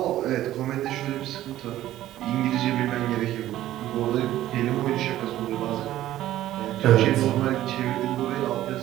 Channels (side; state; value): left; quieter; 13.9 dB